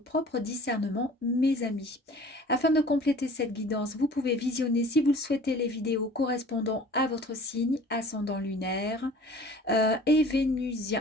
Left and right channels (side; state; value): both; normal; correlation 0.46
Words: discernement, mes amis. Afin de compléter cette guidance, vous pouvez visionner, si vous le souhaitez, les vidéos correspondant à votre signe, ascendant lunaire et